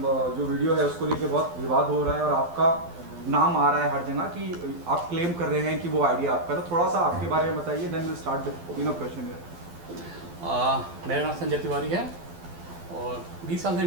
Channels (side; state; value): left; late; 12 ms